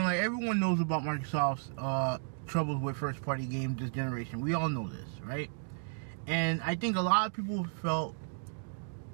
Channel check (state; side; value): silent; left; digital silence